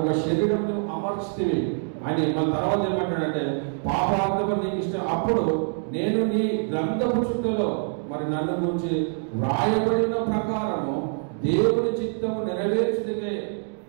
ఒక శరీరం అమర్చితివి అని. మన తర్వాత ఏమంటాడంటే పాపార్థము నీకు ఇష్టం, అప్పుడు నేను నీ గ్రంథపు చుట్టలో మరి నన్ను గురించి వ్రాయబడిన ప్రకారము దేవుని చిత్తము నెరవేర్చుటకే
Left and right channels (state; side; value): silent; left; 62 dB below the other